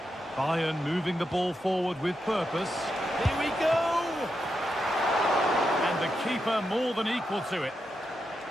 Bayern moving the ball forward with purpose. Here we go! And the keeper more than equal to it.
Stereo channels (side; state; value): both; normal; correlation 0.85